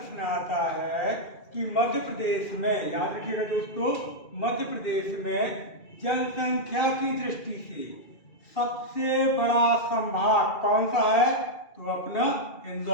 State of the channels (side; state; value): right; late; 2.4 ms